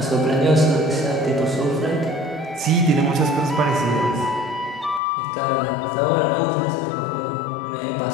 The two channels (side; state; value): right; drops out; at 5.0 s